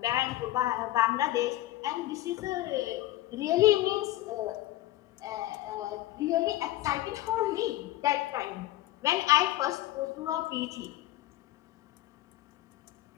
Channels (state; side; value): quieter; right; 15.7 dB